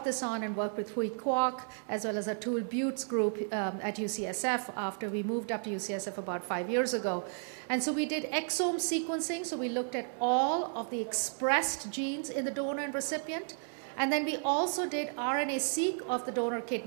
this on and worked with Hui Kwok, as well as Atul Butte's group at UCSF after we moved up to UCSF about 5 years ago. And so we did exome sequencing, so we looked at all of the expressed genes in the donor and recipient, and then we also did RNA-seq of the donor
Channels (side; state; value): left; silent; 56 dB below the other